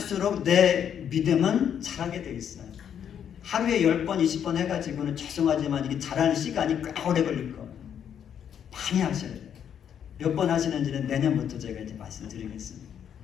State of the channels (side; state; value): right; quieter; 8.8 dB